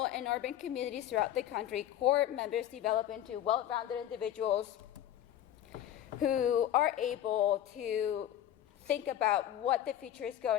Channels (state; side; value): quieter; right; 11.5 dB